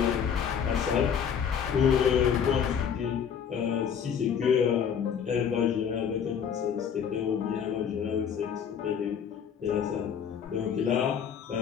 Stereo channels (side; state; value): right; quieter; 7.7 dB